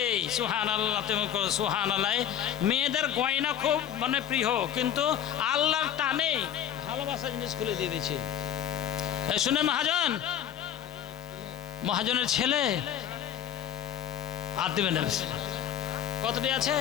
সুবহানাল্লাহ। তুমি সুবহানাল্লাহ। মেয়েদের গয়না খুব মানে প্রিয়, কিন্তু আল্লাহর টানে ভালোবাসা জিনিস খুলে দিয়ে দিয়েছে। শুনে মহাজনের ছেলে আর দিবেন কতটি আছে?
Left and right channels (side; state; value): right; quieter; 10.0 dB